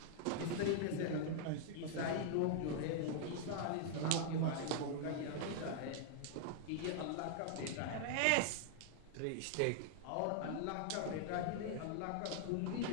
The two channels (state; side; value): different; both; correlation -0.01